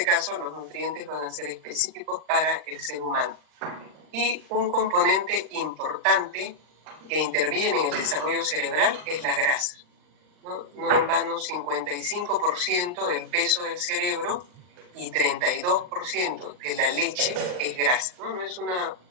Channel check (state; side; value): late; left; 39 ms